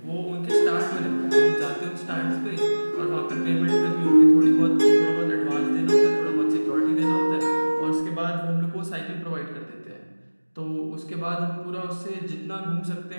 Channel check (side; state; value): both; inverted; correlation -1.00